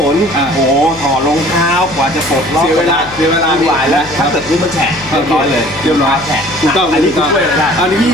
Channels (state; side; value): noise; left; hum, 19 dB below the sound